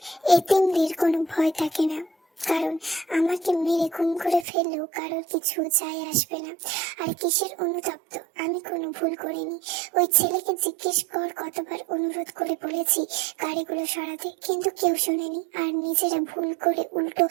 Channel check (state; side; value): drops out; left; at 4.5 s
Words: এতিমদের কোনো ভয় থাকে না, কারণ আমাকে মেরে খুন করে ফেললেও কারোর কিছু যায় আসবে না। আর কিসের অনুতপ্ত, আমি কোনো ভুল করিনি। ওই ছেলেকে জিজ্ঞেস কর কতবার অনুরোধ করে বলেছি গাড়িগুলো সরাতে, কিন্তু কেউ শোনেনি। আর নিজেরা ভুল করে উল্টো